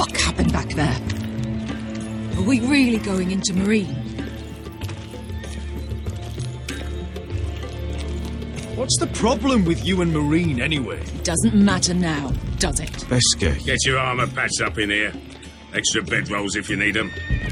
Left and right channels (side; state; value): both; identical; correlation 1.00